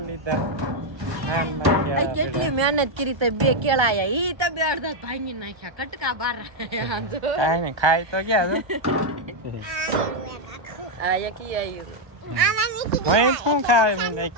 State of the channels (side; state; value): left; late; 1.2 ms